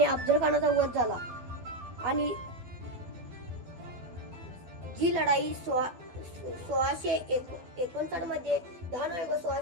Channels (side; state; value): left; late; 12 ms